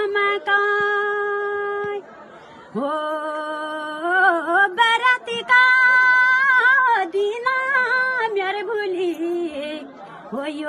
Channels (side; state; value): both; identical; correlation 1.00